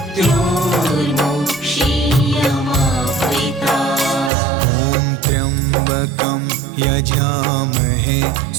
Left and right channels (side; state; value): left; drops out; at 4.3 s